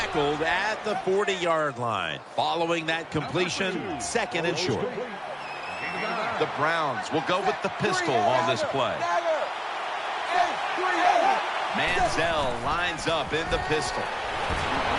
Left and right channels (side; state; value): both; identical; correlation 1.00